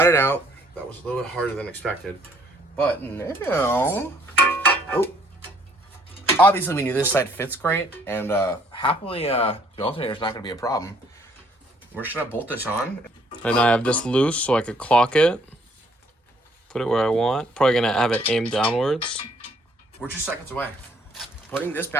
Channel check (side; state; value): both; normal; correlation 0.63